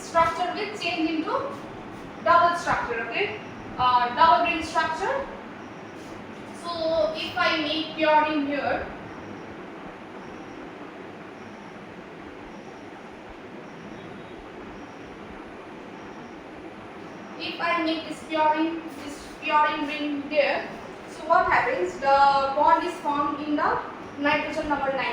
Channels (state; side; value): identical; both; correlation 1.00